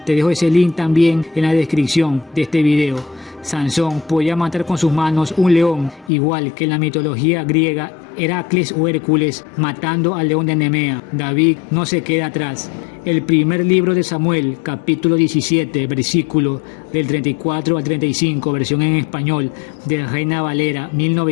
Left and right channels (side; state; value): right; drops out; at 6.1 s